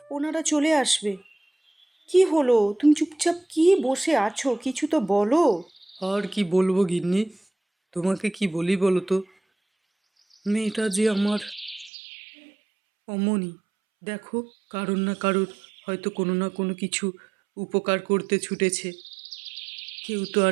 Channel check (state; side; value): drops out; left; at 11.9 s